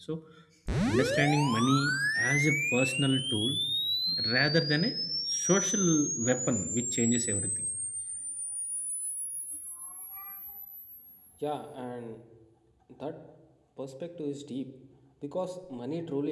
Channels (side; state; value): both; identical; correlation 1.00